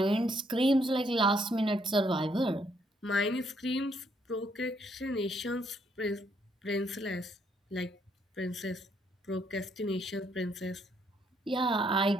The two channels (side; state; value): both; normal; correlation 0.71